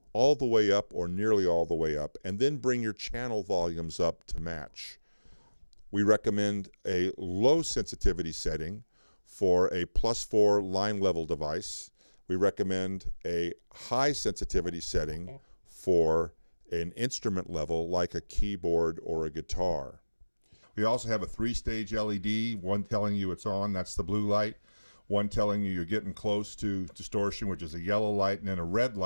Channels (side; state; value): both; inverted; correlation -1.00